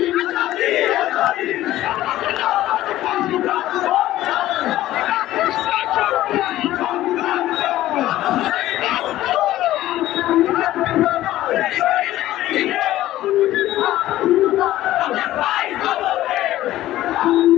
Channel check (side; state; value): right; quieter; 14.7 dB